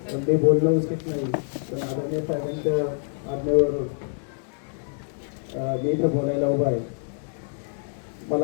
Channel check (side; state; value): right; silent; 61 dB below the other